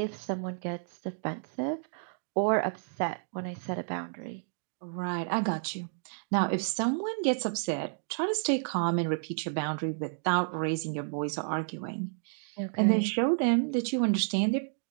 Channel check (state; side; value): silent; left; digital silence